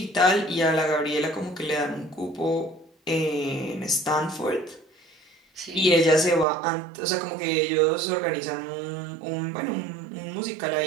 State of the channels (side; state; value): left; drops out; at 6.5 s